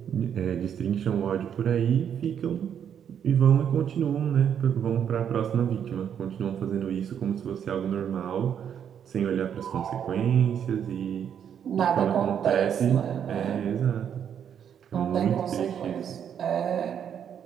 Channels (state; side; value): quieter; left; 8.6 dB